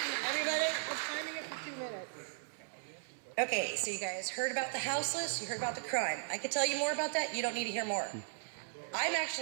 Everybody, we're timing it for 2 minutes. Okay, so you guys heard about the houseless, you heard about the crime. I could tell you more about that, you don't need to hear more. I'm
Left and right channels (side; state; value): left; silent; digital silence